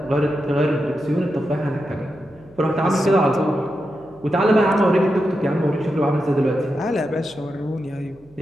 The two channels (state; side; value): noise; right; hum, 27 dB below the sound